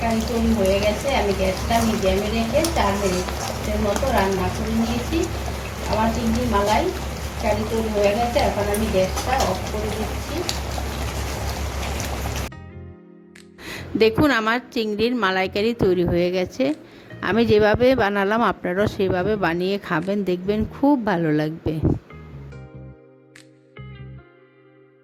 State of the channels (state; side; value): identical; both; correlation 1.00